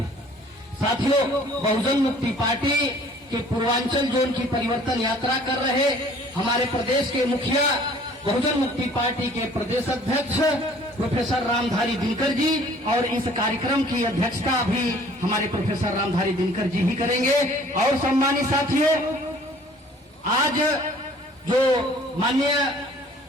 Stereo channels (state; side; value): normal; both; correlation 0.54